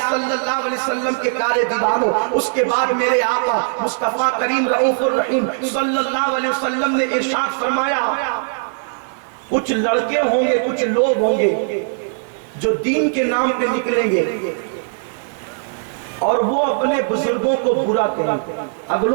صلی اللہ علیہ وسلم کے پیارے دیوانوں، اس کے بعد میرے آقا مصطفیٰ کریم رؤوف الرحیم صلی اللہ علیہ وسلم نے ارشاد فرمایا کچھ لڑکے ہوں گے، کچھ لوگ ہوں گے جو دین کے نام پہ نکلیں گے اور وہ اپنے بزرگوں کو برا کریں گے،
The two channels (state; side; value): silent; left; digital silence